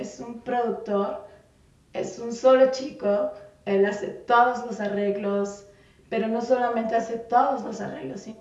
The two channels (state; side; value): identical; both; correlation 1.00